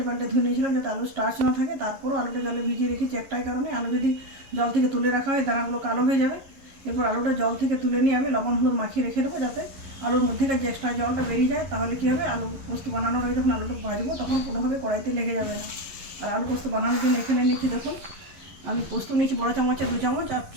পাল্টে ধুয়ে নিয়েছিলাম যাতে আলু স্টার্চ না থাকে। তারপরও আলুটা জলে ভিজিয়ে রেখেছি একটাই কারণে, আলু যদি জল থেকে তুলে রাখা হয় দানাগুলো কালো হয়ে যাবে। এরপর আলুটা জল থেকে তুলে নিয়ে আমি লবণ হলুদ মাখিয়ে রেখে দেবো যাতে আলুর মধ্যেকার যে এক্সট্রা জলটা বেরিয়ে যায়। তাহলে কী হবে, আলু পোস্ত বানানোর আগে যখন আলুটা ভাজবো তখন কোনোভাবে কড়াইতে লেগে যাবে না। আর আলু পোস্ত বানানোর জন্য এখানে নিয়েছি দেখুন, আমি পোস্ত নিয়েছি বড় চামচে 2 চামচ, আর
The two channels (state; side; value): late; left; 11 ms